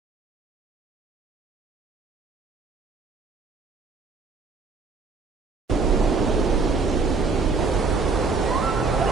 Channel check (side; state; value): left; quieter; 4.4 dB